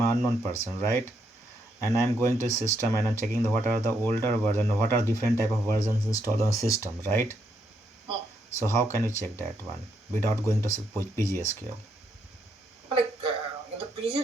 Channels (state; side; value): normal; both; correlation 0.77